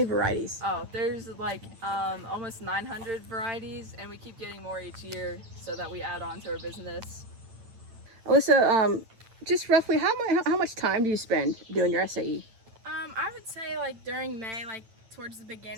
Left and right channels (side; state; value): left; late; 8.9 ms